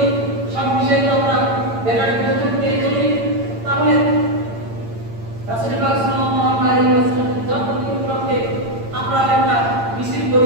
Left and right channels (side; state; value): left; late; 8.8 ms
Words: সব বিষয়ে তো আমরা ব্যানার দিয়ে চলি, তাহলে রাসূলুল্লাহ সাল্লাল্লাহু আলাইহি ওয়াসাল্লামের জন্মদিন উপলক্ষে আমরা একটা মিছিল